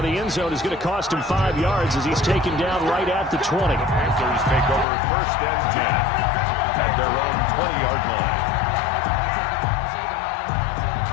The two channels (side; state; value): right; drops out; at 4.9 s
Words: the end zone is going to cost him 5 yards as he's taken down right at the 20. Panthers take over 1st and 10 at their own 20-yard line.